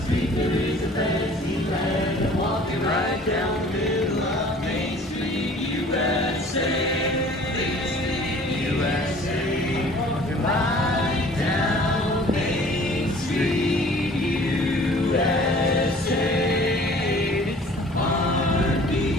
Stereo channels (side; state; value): both; normal; correlation 0.50